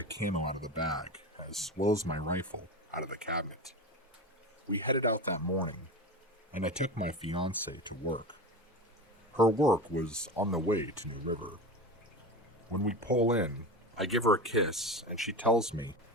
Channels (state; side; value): normal; both; correlation 0.26